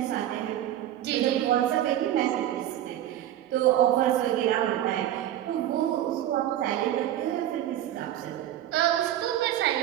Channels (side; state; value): left; quieter; 12.4 dB